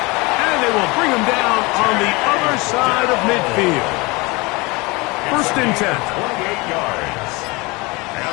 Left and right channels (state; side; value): quieter; right; 25.1 dB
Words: And they will bring him down on the other side of midfield. First and 10. 28 yards.